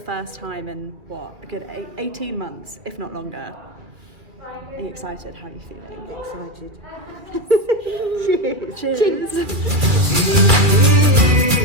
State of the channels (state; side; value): late; left; 2.3 ms